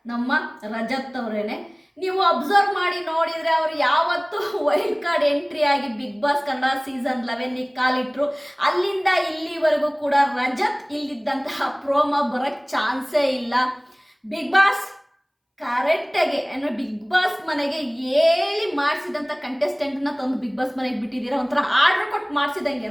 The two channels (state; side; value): identical; both; correlation 1.00